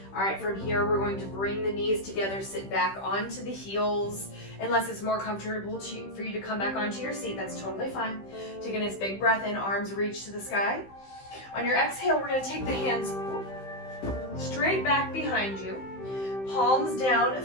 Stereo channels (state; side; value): late; right; 15 ms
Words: All right, from here, we're going to bring the knees together, sit back onto the heels. Unless it's more comfortable for you to come back onto your seat, that's totally fine. Take a nice big breath in, arms reach to the sky. On your exhale, we're gonna take the hands straight back behind you. Palms down,